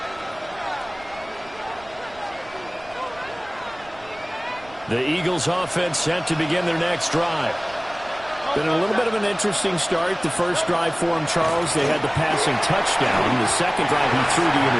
The Eagles offense set to begin their next drive. Been a little bit of an interesting start. The first drive for him, Charles, they had the passing touchdown. The second drive, he threw the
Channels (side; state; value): right; noise; rumble, 23 dB below the sound